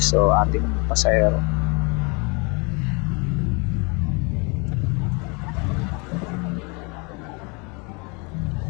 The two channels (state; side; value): quieter; right; 31.0 dB